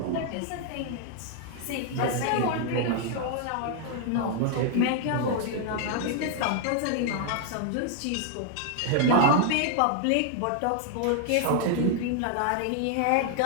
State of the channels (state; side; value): different; both; correlation 0.00